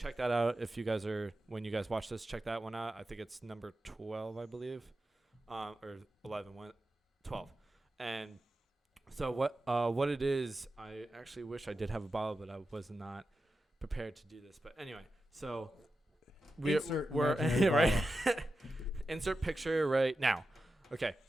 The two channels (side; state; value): both; normal; correlation 0.91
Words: that out if you guys when you guys watch this, check that one out. I think it's number 12, I believe, or 11, 12. And so what it is, I actually wish I did have a bottle, but I was not prepared to do this. But anyway, so we're right. Insert picture right now. Okay,